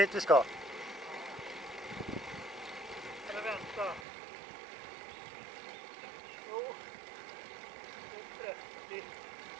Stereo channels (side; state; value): left; drops out; at 4.0 s